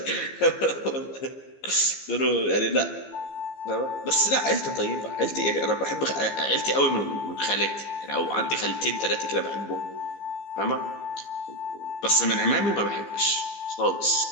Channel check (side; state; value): right; late; 15 ms